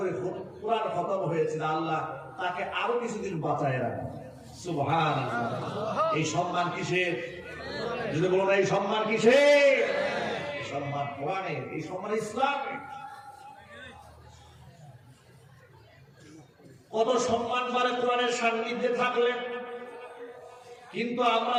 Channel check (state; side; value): identical; both; correlation 1.00